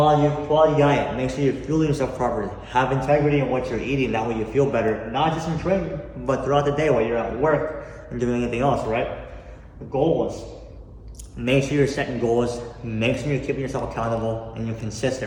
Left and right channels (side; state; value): both; identical; correlation 1.00